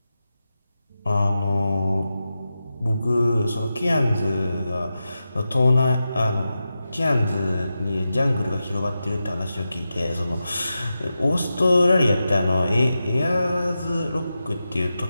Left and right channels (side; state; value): both; inverted; correlation -0.91